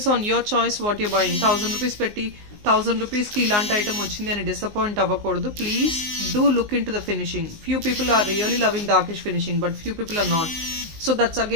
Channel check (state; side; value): late; left; 19 ms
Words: on your choice what you're buying. 1000 rupees పెట్టి 1000 రూపీస్కి ఇలాంటి item వచ్చింది అని disappoint అవ్వకూడదు. Please do look into the finishing. Few people are really loving darkish finishing, but few people are not. So that's